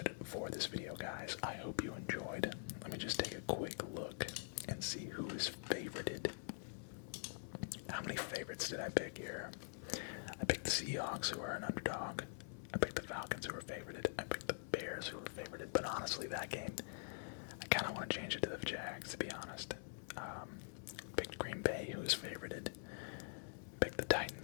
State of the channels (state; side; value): silent; right; digital silence